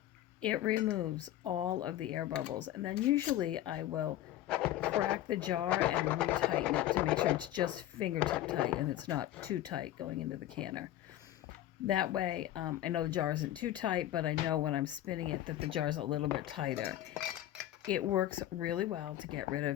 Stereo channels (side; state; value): right; quieter; 13.3 dB